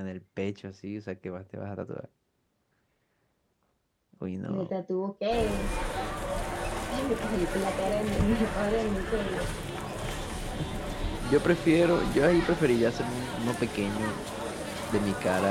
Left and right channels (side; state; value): both; identical; correlation 1.00